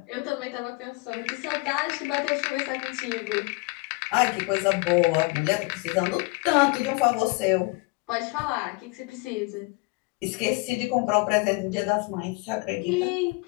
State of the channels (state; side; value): quieter; right; 26.2 dB